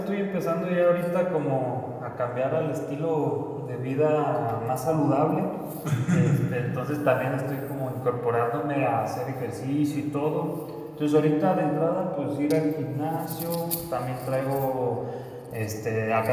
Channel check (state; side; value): identical; both; correlation 1.00